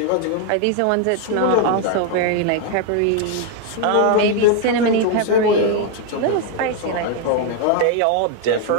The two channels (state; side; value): different; both; correlation 0.01